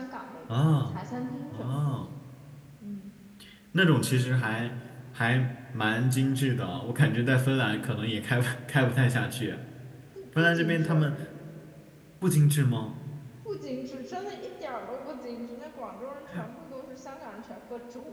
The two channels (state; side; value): identical; both; correlation 1.00